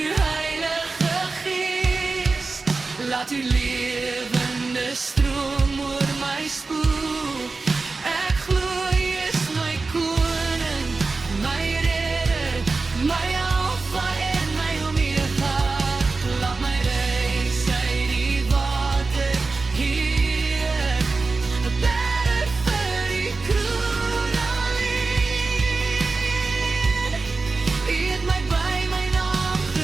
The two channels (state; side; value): quieter; left; 3.9 dB